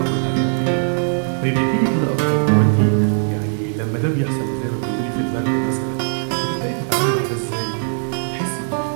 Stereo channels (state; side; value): silent; left; 63 dB below the other